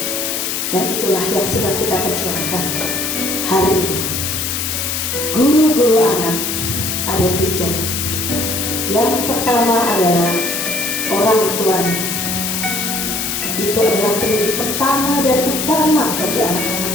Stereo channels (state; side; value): noise; left; hiss, 1 dB below the sound